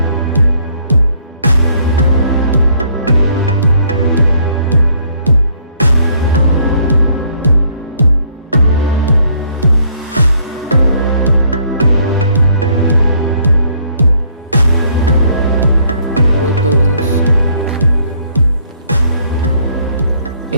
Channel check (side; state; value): both; inverted; correlation -0.65